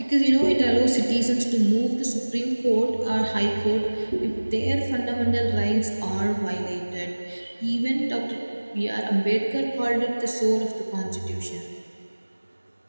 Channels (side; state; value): both; inverted; correlation -1.00